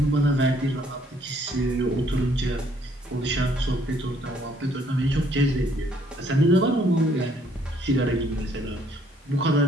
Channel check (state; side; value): normal; both; correlation 0.65